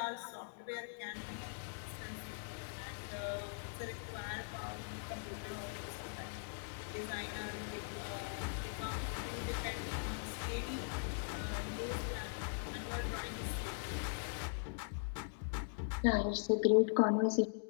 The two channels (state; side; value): silent; right; digital silence